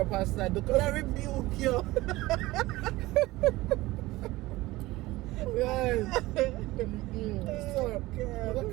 Pastor because I rebuke you. Guys. So I'm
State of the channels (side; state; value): left; quieter; 19.0 dB